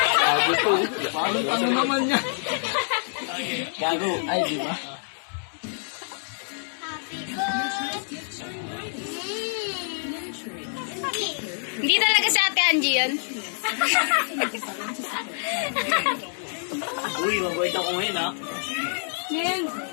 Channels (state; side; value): silent; right; digital silence